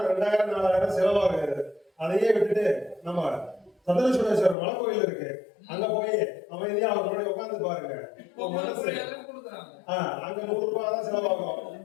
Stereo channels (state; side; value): drops out; right; at 4.5 s